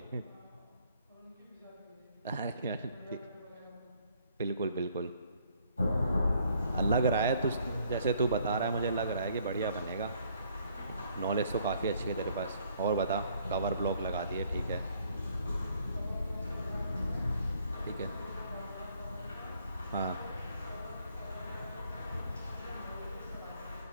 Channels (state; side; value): inverted; both; correlation -0.65